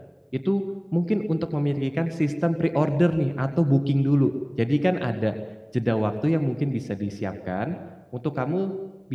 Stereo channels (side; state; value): both; identical; correlation 1.00